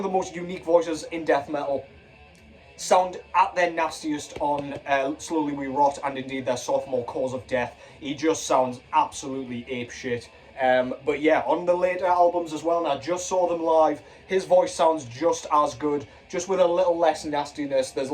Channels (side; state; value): both; identical; correlation 1.00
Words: the most unique voices in death metal. Sound at their nastiest on Slowly We Rot, and indeed their sophomore, Cause of Death. He just sounds absolutely apeshit. But yeah, on the later albums as well, and I just saw them live, his voice sounds just as good, just with a little less nastiness. There's